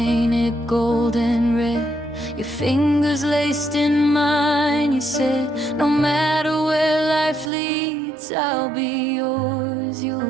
gold and red, your fingers laced in mine. You said, no matter where life leads, I'll be yours,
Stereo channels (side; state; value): left; drops out; at 7.5 s